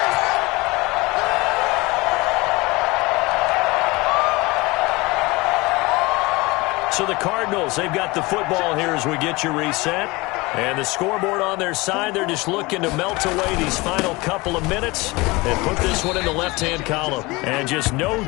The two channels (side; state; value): right; quieter; 23.4 dB